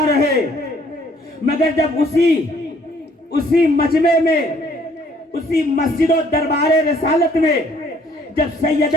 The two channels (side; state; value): both; normal; correlation 0.62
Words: رہے، مگر جب اسی مجمع میں، اسی مسجد و دربار رسالت میں جب